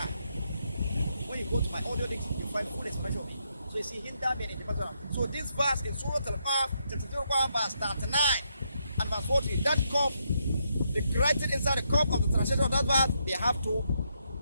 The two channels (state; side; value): inverted; both; correlation -0.79